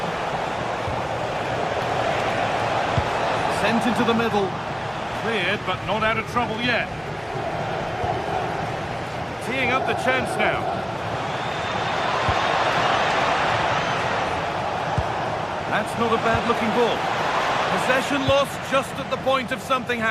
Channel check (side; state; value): both; identical; correlation 1.00